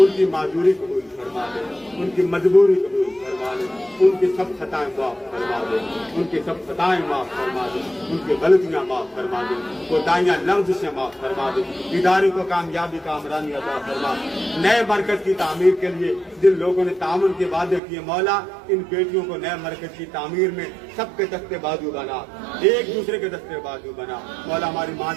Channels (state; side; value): drops out; left; at 17.8 s